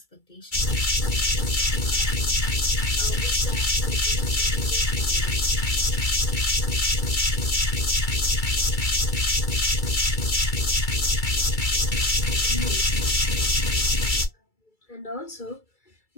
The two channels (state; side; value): late; right; 2.3 ms